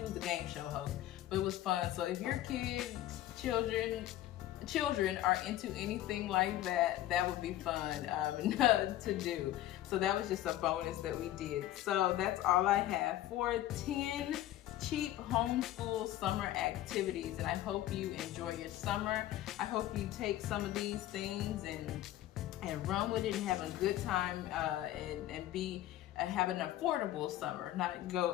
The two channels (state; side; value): quieter; right; 13.9 dB